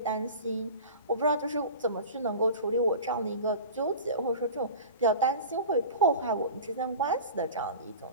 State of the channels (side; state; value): both; inverted; correlation -0.35